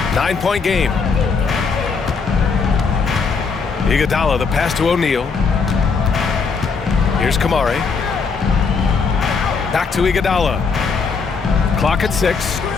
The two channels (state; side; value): quieter; right; 5.1 dB